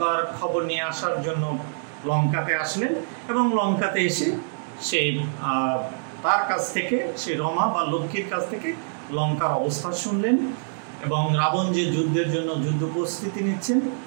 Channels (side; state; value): left; silent; digital silence